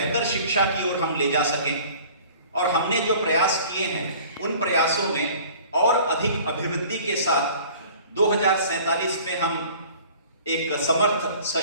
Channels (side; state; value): both; inverted; correlation -0.48